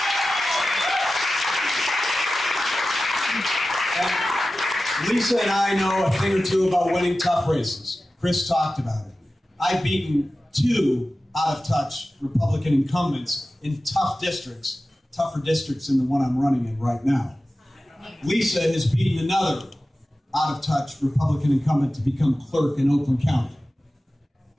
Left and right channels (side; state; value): both; normal; correlation 0.95